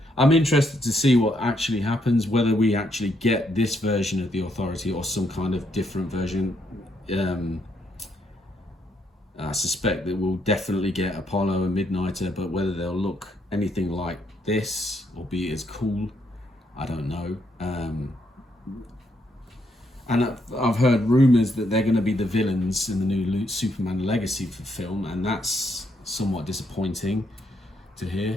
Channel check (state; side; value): normal; both; correlation 0.75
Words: I'm interested to see what actually happens, whether we actually get this version of the Authority or some kind of different version. I suspect that we'll definitely get Apollo and Midnighter, but whether they'll look anything like this or be as cool, I don't know. And I've heard rumours that they're going to be the villains in the new Superman Legacy film, and that's somewhat disappointing to